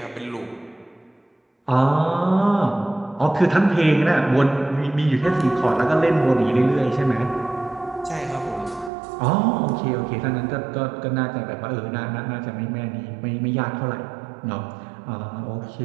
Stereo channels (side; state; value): left; drops out; at 8.9 s